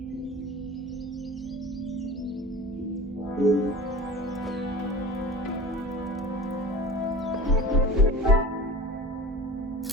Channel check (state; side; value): normal; both; correlation 0.37